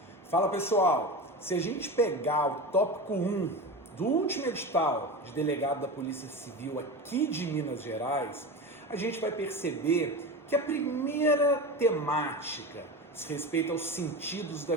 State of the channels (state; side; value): normal; both; correlation 0.26